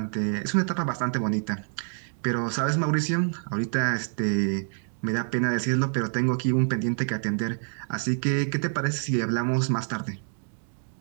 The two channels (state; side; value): silent; left; 60 dB below the other